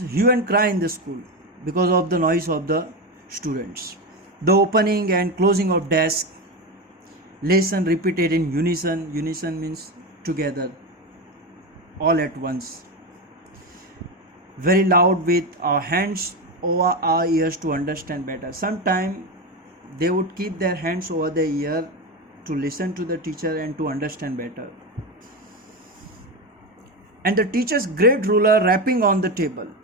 and cry in the school because of the noise of the students. The opening and closing of desk, lesson repeated in unison. Unison means together, all at once. Very loud with our hands over our ears to understand better. Sometimes they would keep their hands over their ear to listen to the teacher and to understand better. And the teacher's great ruler rapping on the table.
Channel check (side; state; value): both; normal; correlation 0.17